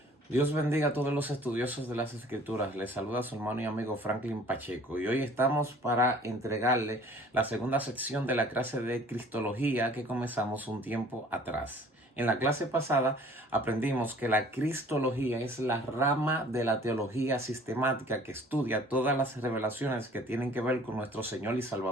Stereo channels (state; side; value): normal; both; correlation 0.51